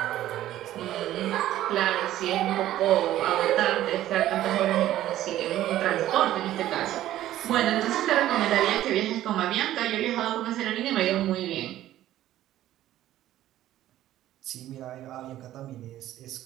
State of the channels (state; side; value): quieter; left; 13.5 dB